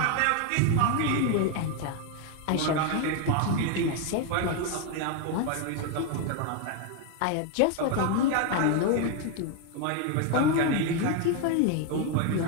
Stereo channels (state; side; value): different; both; correlation 0.01